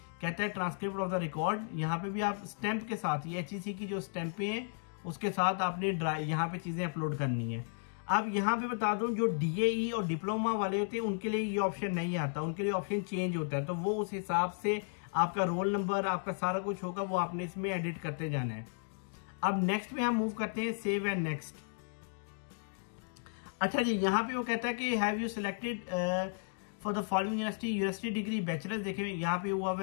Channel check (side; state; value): right; silent; digital silence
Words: कहता है ट्रांसक्रिप्ट ऑफ द रिकॉर्ड, यहाँ पे भी आप स्टैंप के साथ, ये HEC की जो स्टैंपें हैं उसके साथ आपने यहाँ पे चीजें अपलोड करनी है। अब यहाँ पे बता दूं जो DAE और डिप्लोमा वाले होते हैं उनके लिए ये ऑप्शन नहीं आता, उनके लिए ऑप्शन चेंज होता है, तो वो उस हिसाब से आपका रोल नंबर आपका सारा कुछ होगा, वो आपने इसमें एडिट करते जाना है। अब नेक्स्ट में हम मूव करते हैं सेव एंड नेक्स्ट। अच्छा जी यहाँ पे वो कहता है कि have you selected for the following university degree bachelors, देखिए यहाँ पे हुआ